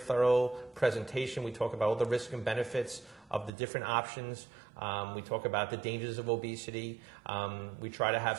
presentation. We talk about all the risks and benefits of the different options. We talk about the dangers of obesity. We try to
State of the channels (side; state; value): left; drops out; at 3.5 s